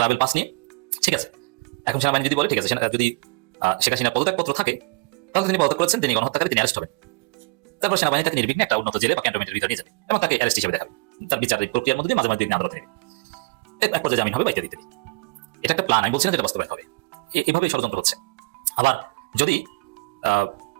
পাস নিয়ে, ঠিক আছে। এখন সেনাবাহিনী যদি বলে ঠিক আছে, যদি শেখ হাসিনার পদত্যাগপত্র থাকে তাহলে তিনি পদত্যাগ করেছেন, তিনি গণহত্যাকারী, তিনি অ্যারেস্ট হবেন। তারপর সেনাবাহিনী তাকে নির্বিঘ্নে একটা উন্নত জেলে বা ক্যান্টনমেন্টের ভিতরে নিয়ে যাবে এবং তাকে অ্যারেস্ট হিসেবে দেখাবে। তার বিচারিক প্রক্রিয়ার মধ্যে মাঝে মাঝে আদালতে নেবে, এক পর্যায়ে জামিন হবে, বাইকে দিতে হবে। এটা একটা প্ল্যান, আমি বলছি না যেটা বাস্তবায়ন হবে। এভাবে ষড়যন্ত্র হচ্ছে। আবার যদি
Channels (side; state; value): left; quieter; 28.2 dB